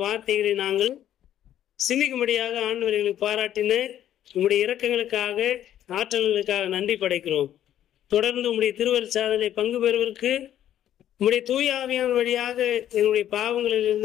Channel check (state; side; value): quieter; right; 11.4 dB